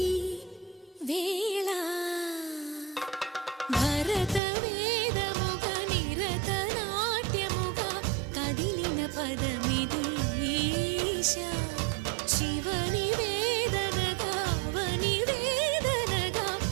వేళ భరత వేదముగ నిరత నాట్యముగా కదిలిన పదమిది ఈశ. శివని వేదనగా వని వేదనగా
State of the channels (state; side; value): drops out; left; at 4.4 s